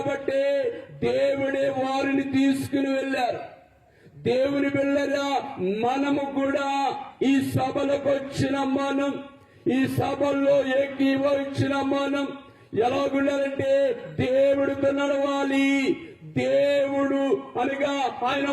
దేవుడే వారిని తీసుకుని వెళ్ళారు. దేవుని బిడ్డలా, మనము కూడా ఈ సభలకు వచ్చిన మనం, ఈ సభల్లో ఏకీభవించిన మనం ఎలాగుండాలంటే దేవుడితో నడవాలి. దేవుడు అనగా ఆయన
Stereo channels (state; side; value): identical; both; correlation 1.00